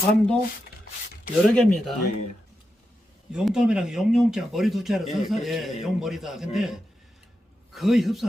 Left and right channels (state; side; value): normal; both; correlation 0.88